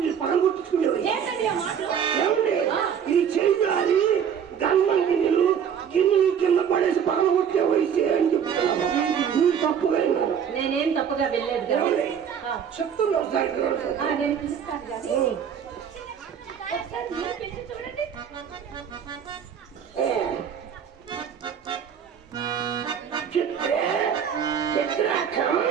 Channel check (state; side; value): quieter; left; 8.0 dB